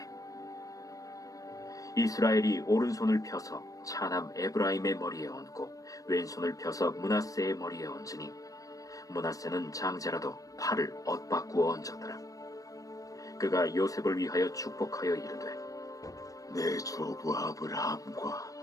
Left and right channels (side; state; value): right; late; 0.16 ms